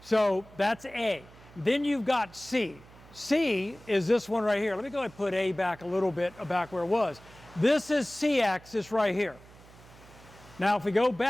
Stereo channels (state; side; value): noise; right; hum, 22 dB below the sound